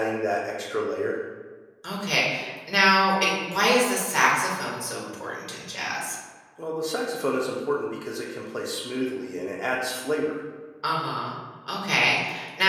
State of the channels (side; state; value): both; identical; correlation 1.00